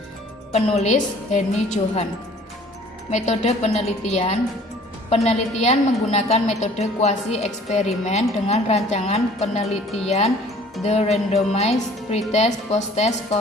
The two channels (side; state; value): both; normal; correlation 0.52